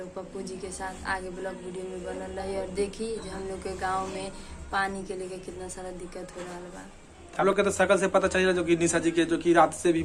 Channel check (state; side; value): identical; both; correlation 1.00